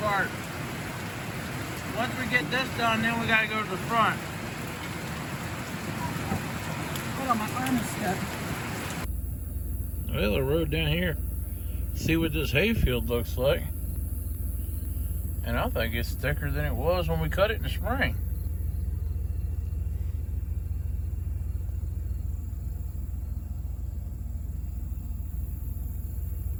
Once we get this done, then we gotta go to the front. Hold on, my arm is stuck. Well, I rode down here. See what this hayfield looks like. And I think it's thicker than it was when we cut it in the spring.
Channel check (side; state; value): both; identical; correlation 1.00